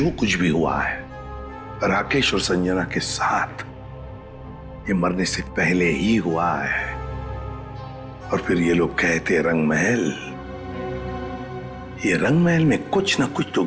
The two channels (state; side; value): identical; both; correlation 1.00